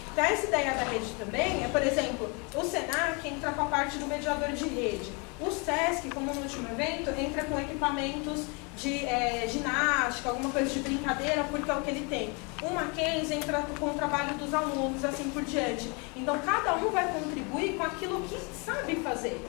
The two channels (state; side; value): quieter; right; 32.0 dB